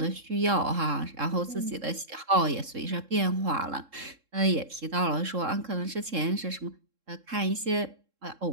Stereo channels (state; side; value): late; left; 3.7 ms